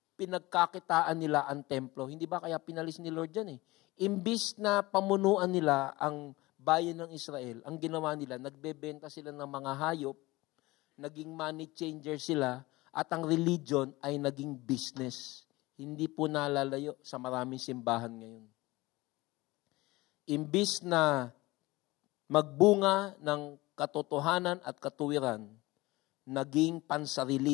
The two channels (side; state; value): right; quieter; 20.6 dB